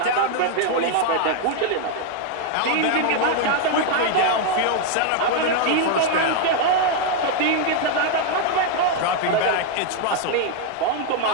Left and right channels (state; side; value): different; both; correlation 0.00